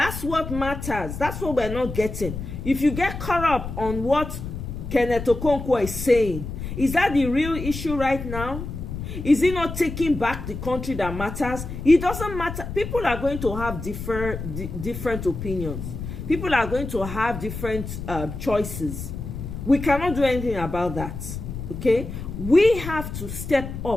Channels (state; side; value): noise; left; rumble, 7 dB below the sound